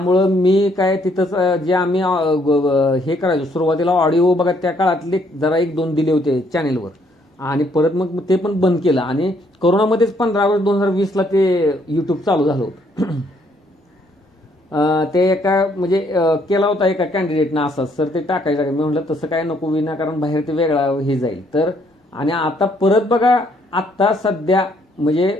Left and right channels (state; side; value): normal; both; correlation 0.68